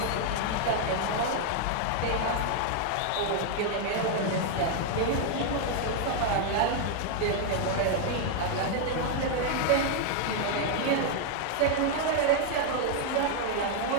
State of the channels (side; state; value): both; different; correlation 0.00